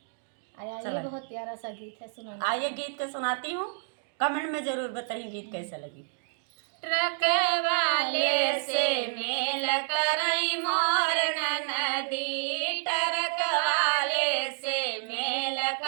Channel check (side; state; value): left; silent; digital silence